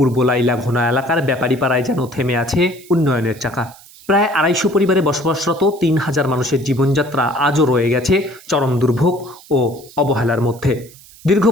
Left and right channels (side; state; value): right; noise; hiss, 23 dB below the sound